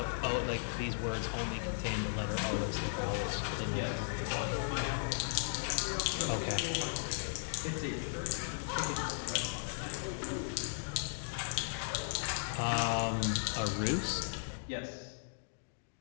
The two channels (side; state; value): right; silent; digital silence